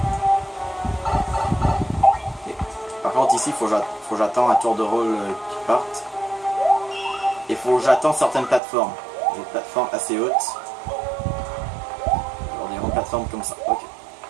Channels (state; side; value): drops out; left; at 8.6 s